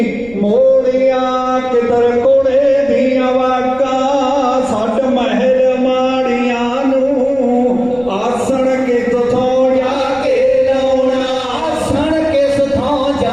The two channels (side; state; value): right; noise; rumble, 23 dB below the sound